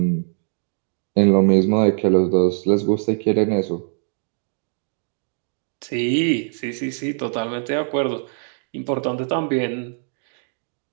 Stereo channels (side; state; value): left; silent; digital silence